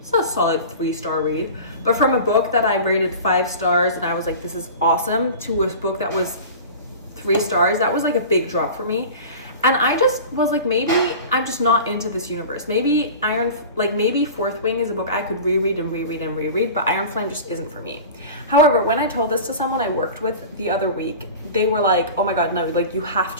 a solid 3-star read. But from a book that I rated 5 stars and I was like, this is awesome, to a book that was 3 stars, that was like a big drop for me. And I just was like, maybe I'm just not into this universe. Maybe maybe Fourth Wing is a book I could reread and reread and reread, but Iron Flame just isn't for me. However, when I told this to someone I worked with the other week, they were like, oh my God, no, like you have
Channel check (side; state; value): both; inverted; correlation -0.36